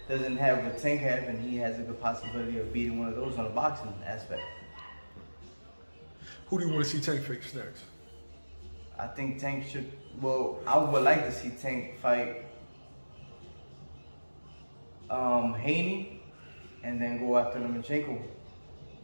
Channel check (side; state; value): both; inverted; correlation -1.00